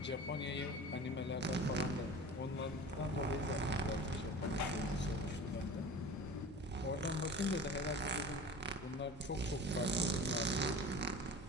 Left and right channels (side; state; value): both; normal; correlation 0.38